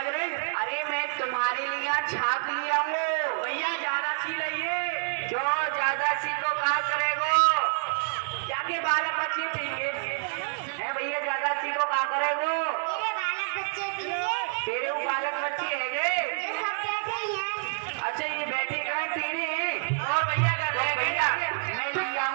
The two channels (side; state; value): left; silent; digital silence